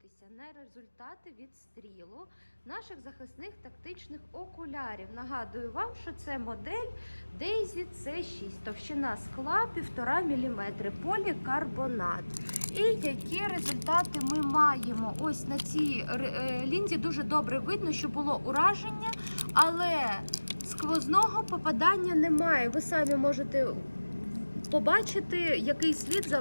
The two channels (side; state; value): both; inverted; correlation -1.00